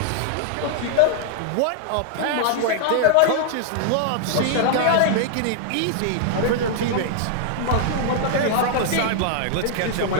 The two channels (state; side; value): different; both; correlation -0.01